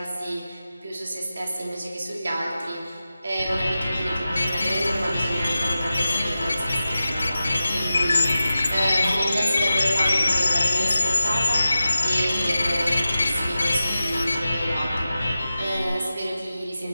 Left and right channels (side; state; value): both; inverted; correlation -0.93